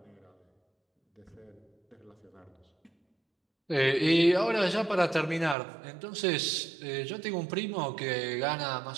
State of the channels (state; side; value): drops out; left; at 5.6 s